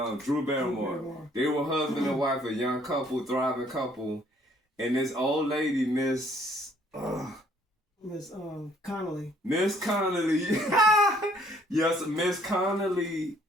and Drew Barrymore. They were husband and wife, a young couple, thriving couple. And this old lady, Miss Connolly. Miss Connolly. Yes, Miss Connolly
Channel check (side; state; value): both; normal; correlation 0.62